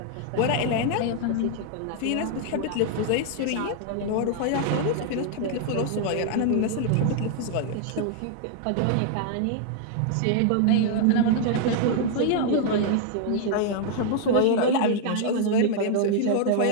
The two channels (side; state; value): both; different; correlation 0.00